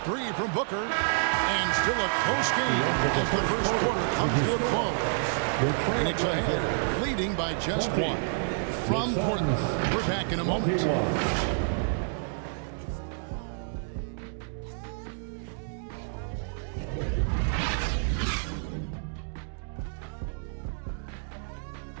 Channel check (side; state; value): left; silent; digital silence